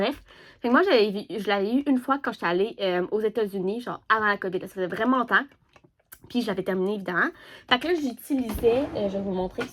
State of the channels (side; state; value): both; identical; correlation 1.00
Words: fait que moi, je l'avais eu une fois quand j'étais allée aux États-Unis, genre avant la COVID. Ça faisait vraiment longtemps. Puis je l'avais terminé, évidemment. Fait que là, j'utilisais, je vais vous montrer